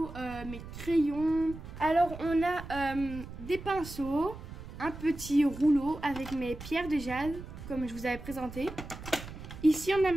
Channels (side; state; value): right; noise; rumble, 12 dB below the sound